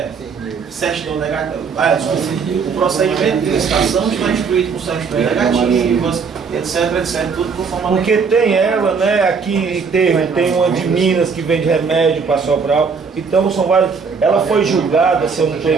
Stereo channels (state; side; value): quieter; left; 5.5 dB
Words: certidão negativa. O procedimento de licitação está instruído com certidões negativas, etc, tudo conforme. Porque tem ela, né? Aqui tem uma de Minas que vende remédio para Sobral. Então são vários. Ela foi julgada, se eu não estou